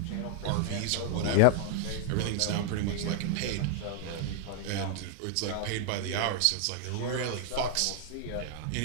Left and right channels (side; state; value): both; different; correlation 0.00